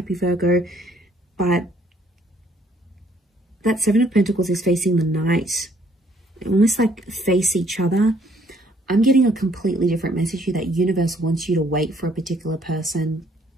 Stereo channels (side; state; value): both; normal; correlation 0.65